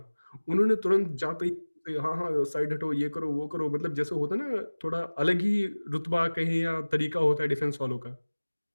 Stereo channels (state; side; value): inverted; both; correlation -1.00